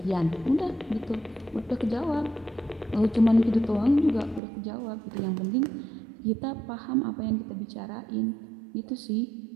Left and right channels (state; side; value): drops out; left; at 4.4 s